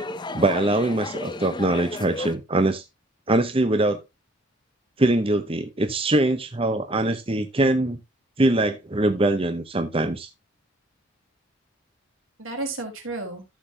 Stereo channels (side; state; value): both; normal; correlation 0.58